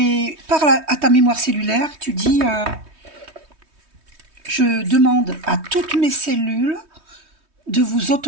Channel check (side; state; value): left; late; 3.2 ms